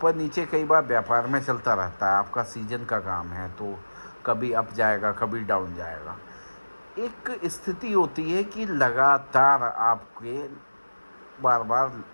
नीचे कई बार व्यापार में चलता रहता है। आपका सीजन का काम है, तो कभी अप जाएगा, कभी डाउन जाएगा। एक स्थिति होती है कि लगातार आपके बार बार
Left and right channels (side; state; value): both; inverted; correlation -1.00